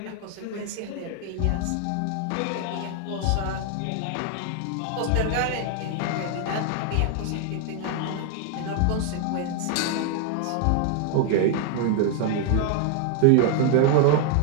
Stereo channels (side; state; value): both; different; correlation 0.00